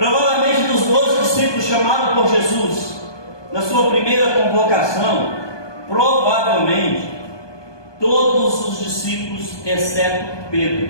dos 12 discípulos chamados por Jesus, na sua primeira convocação, provavelmente todos os discípulos, exceto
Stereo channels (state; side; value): late; right; 1.2 ms